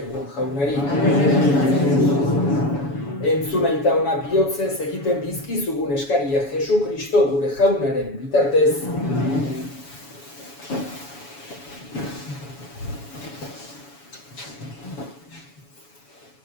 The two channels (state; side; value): late; right; 7.1 ms